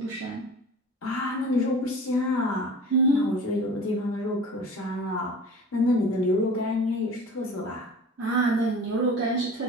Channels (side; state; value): both; normal; correlation 0.40